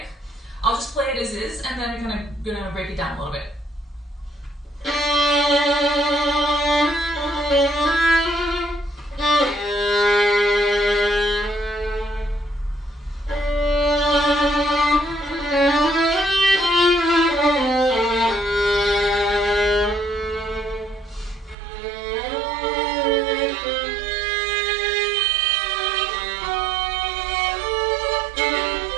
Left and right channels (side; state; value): left; drops out; at 21.6 s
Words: I'll just play it as is, and then we're going to break it down a little bit.